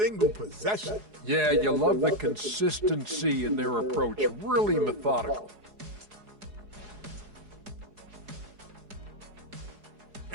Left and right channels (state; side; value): late; left; 4.8 ms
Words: possession. Yeah, you love the consistency in their approach. Really methodical.